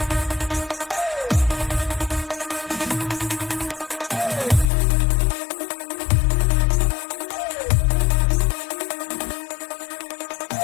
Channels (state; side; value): drops out; right; at 4.7 s